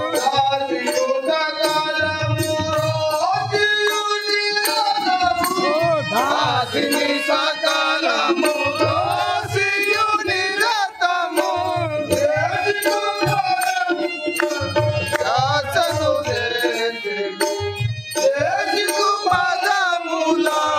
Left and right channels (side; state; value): both; identical; correlation 1.00